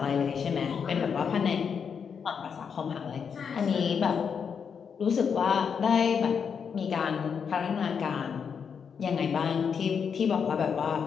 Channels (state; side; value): quieter; right; 6.7 dB